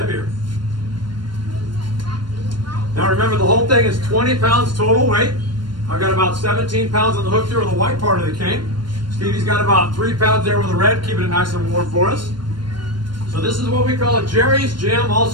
Now remember, the whole thing is 20 pounds total weight. I've got about 17 pounds on the hook here with the white part of the cane. Stevie's got about 3 pounds there with the red, keeping it nice and warm for us. So this is what we call a Jerry's Gym,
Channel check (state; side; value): late; left; 0.72 ms